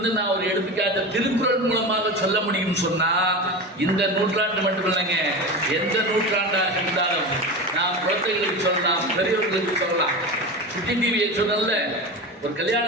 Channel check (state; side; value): normal; both; correlation 0.26